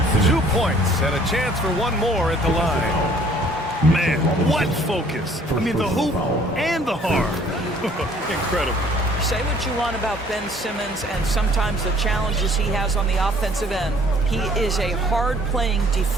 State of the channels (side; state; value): both; normal; correlation 0.57